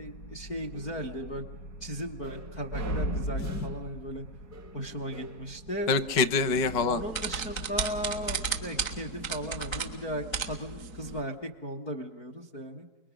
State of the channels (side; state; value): right; late; 4.6 ms